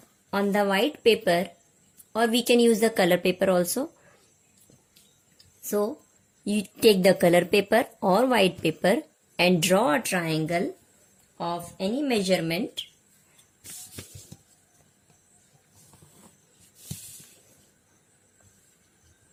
on the white paper, or we can use the color paper also. So you take the color paper or white paper and draw a triangle of any measurement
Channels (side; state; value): both; identical; correlation 1.00